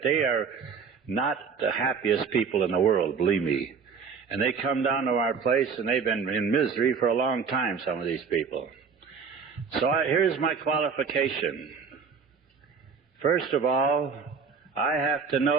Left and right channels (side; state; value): left; quieter; 5.8 dB